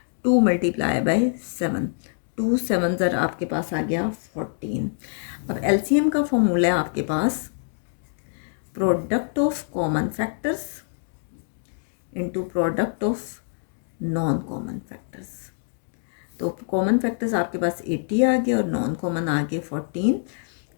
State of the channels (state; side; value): silent; right; digital silence